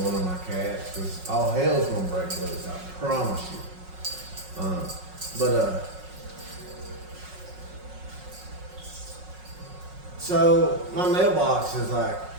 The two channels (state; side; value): late; left; 5.4 ms